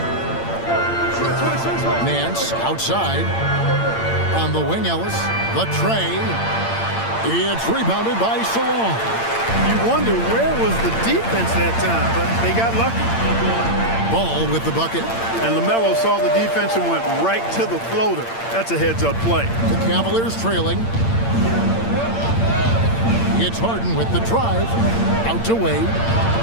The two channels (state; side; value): late; right; 8.8 ms